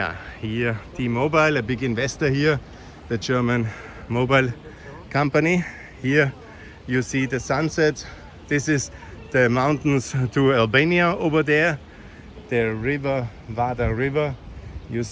Here T-Mobile, a big investor here, the German mobile company. Here you see the sunset. This is the mountains to Albania over there. The river, Vardar River, you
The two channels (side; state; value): both; identical; correlation 1.00